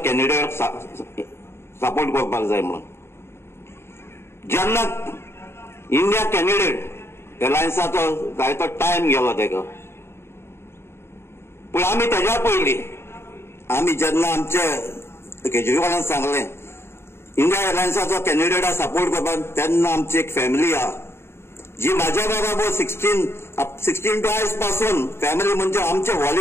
कॅन्डिडेट सपोर्ट करपाक जाय म्हणून. जेन्ना इंडिया कॅन्डिडेट एअरलायन्साचो जाय तो टायम गेलो तेका, पूण आमी तेज्या पयलीं आमी जेन्ना आमचे केजरीवालान सांगलें इंडिया एअरलायन्साचो कॅन्डिडेटा सपोर्ट करपाक, तेन्ना आमची एक फॅमिली आहा जी म्हाज्या बरोबर 16 टू आयज पासून फॅमिली म्हणजे आमचे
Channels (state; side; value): late; right; 0.12 ms